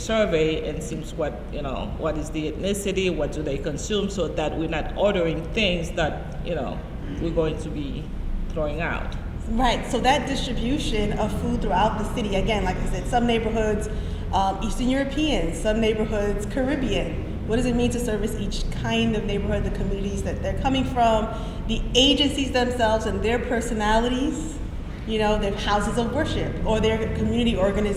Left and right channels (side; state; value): both; identical; correlation 1.00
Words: and seems what is the ethnicity, what do they consume, so that we're not ordering things that, we're going to be throwing out. Right, so that distribution of food throughout the city, again, like I said, some neighborhoods, Eastern European, some neighborhoods, Caribbean. What does it mean to service each kind of neighborhood, the communities that they're coming from, the agencies themselves and their personalities, their houses of worship, or their community